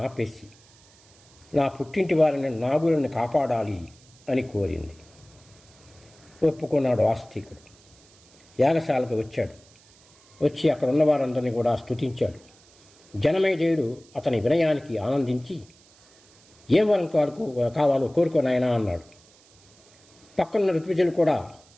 ఆపేసి నా పుట్టింటి వారిని నాగులను కాపాడాలి అని కోరింది. ఒప్పుకున్నాడు ఆస్తికుడు. యాగశాలకు వచ్చాడు. వచ్చి అక్కడ ఉన్న వారందరినీ కూడా స్తుతించాడు. జనమేజయుడు అతని వినయానికి ఆనందించి, ఏం వరం కావాలో కోరుకోనాయనా అన్నాడు. పక్కనున్న ఋత్విజులు కూడా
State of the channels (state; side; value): noise; right; hiss, 28 dB below the sound